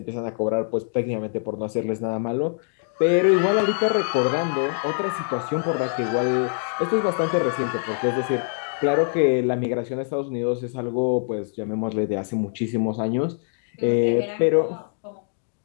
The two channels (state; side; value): silent; right; digital silence